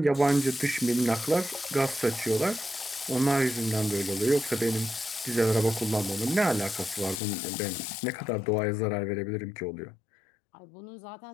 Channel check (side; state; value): right; drops out; at 7.2 s